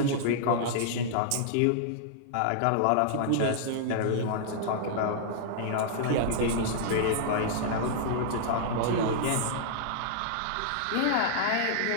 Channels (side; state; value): both; different; correlation -0.01